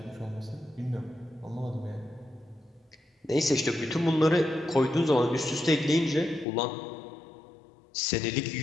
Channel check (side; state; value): right; drops out; at 6.5 s